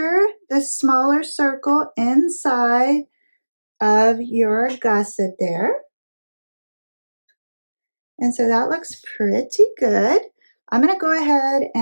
the smaller circle inside of your gusset there. And so that looks pretty good. I'm going to go ahead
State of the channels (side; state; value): both; inverted; correlation -1.00